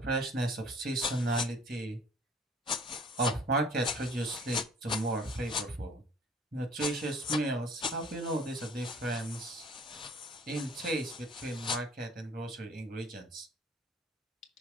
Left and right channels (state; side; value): normal; both; correlation 0.52